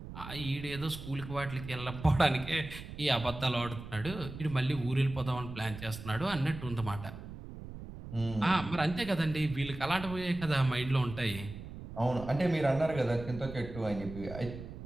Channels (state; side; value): noise; right; rumble, 11 dB below the sound